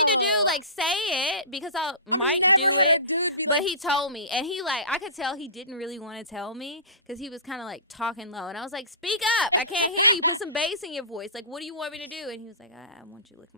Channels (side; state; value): both; inverted; correlation -0.31